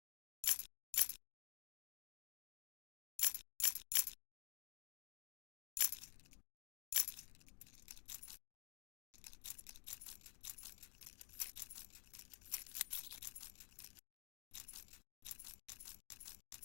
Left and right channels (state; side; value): quieter; right; 38.0 dB